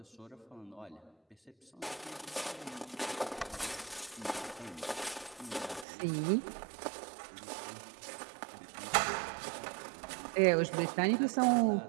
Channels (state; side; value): drops out; left; at 5.9 s